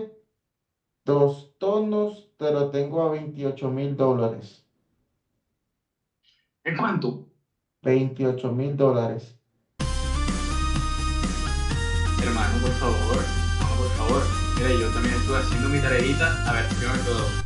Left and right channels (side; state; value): both; identical; correlation 1.00